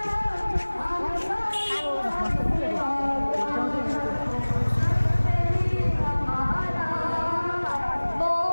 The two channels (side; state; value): both; inverted; correlation -1.00